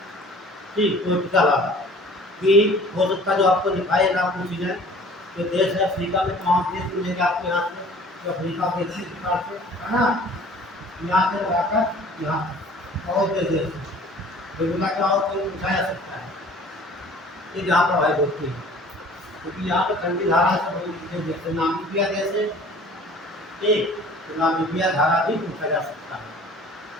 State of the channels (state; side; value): normal; both; correlation 0.49